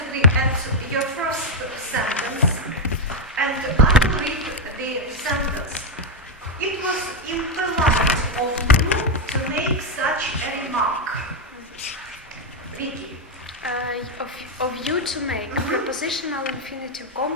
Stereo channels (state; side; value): normal; both; correlation 0.03